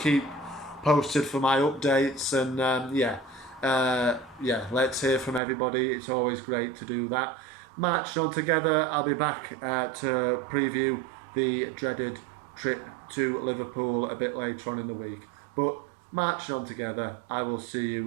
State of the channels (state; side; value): drops out; left; at 5.4 s